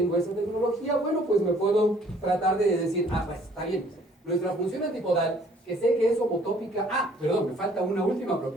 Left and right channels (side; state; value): both; normal; correlation 0.59